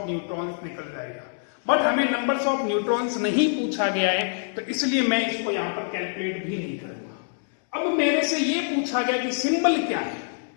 न्यूट्रॉन्स निकल जाएगा। बट हमें नंबर्स ऑफ न्यूट्रॉन्स नहीं पूछा गया है, तो इसलिए मैं इसको यहां पर कैलकुलेट भी नहीं करूंगा। अब मेरे से ये पूछा गया कि सिंबल क्या है,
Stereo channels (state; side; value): silent; right; 62 dB below the other